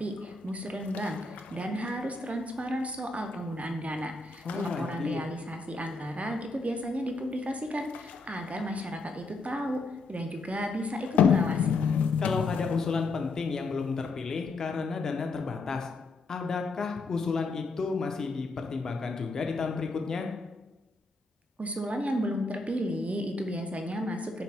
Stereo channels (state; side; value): quieter; right; 3.4 dB